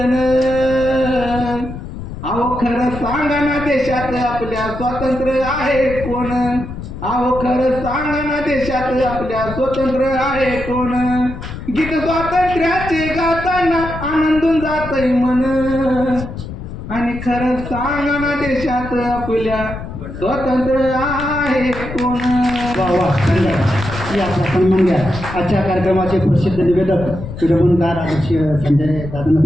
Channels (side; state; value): left; noise; rumble, 10 dB below the sound